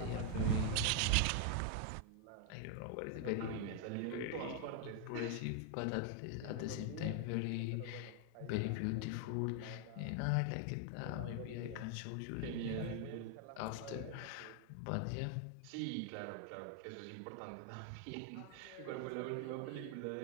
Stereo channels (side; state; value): both; different; correlation 0.00